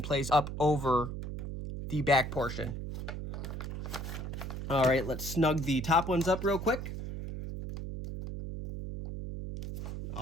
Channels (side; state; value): right; noise; hum, 6 dB below the sound